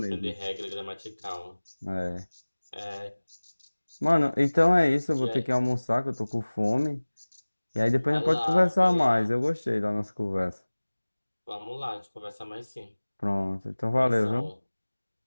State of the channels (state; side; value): inverted; both; correlation -1.00